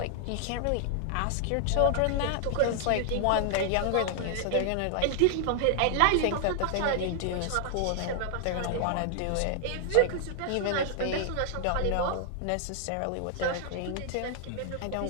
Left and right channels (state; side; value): different; both; correlation 0.00